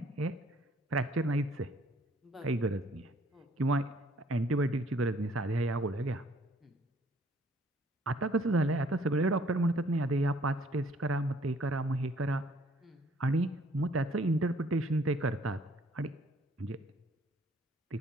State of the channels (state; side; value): normal; both; correlation 0.61